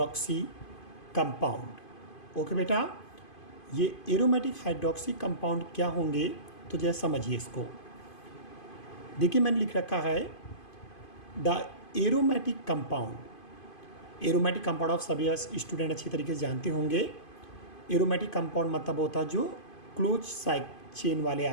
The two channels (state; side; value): late; right; 2.5 ms